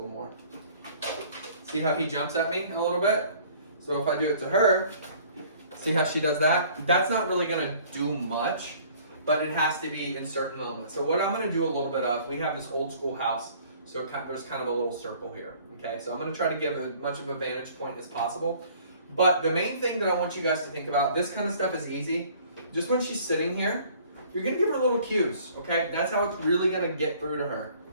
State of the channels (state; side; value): inverted; both; correlation -0.54